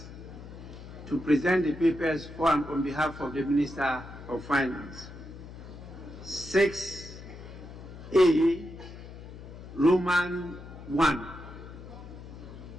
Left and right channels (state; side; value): noise; left; hum, 14 dB below the sound